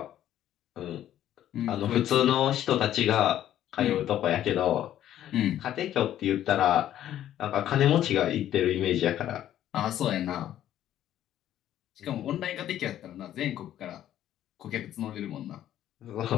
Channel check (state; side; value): quieter; right; 11.8 dB